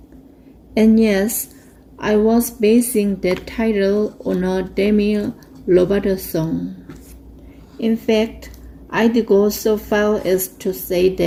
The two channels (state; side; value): identical; both; correlation 1.00